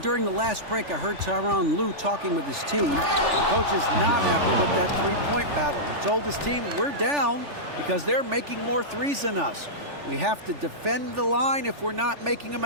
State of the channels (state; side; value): late; left; 3.4 ms